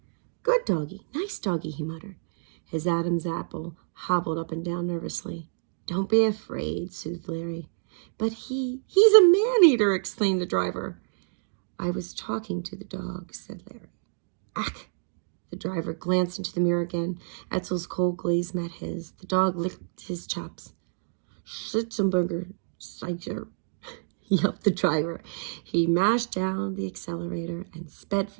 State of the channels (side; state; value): left; silent; digital silence